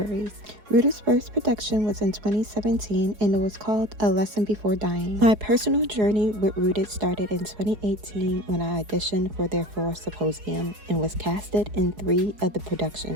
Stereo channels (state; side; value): late; left; 4.8 ms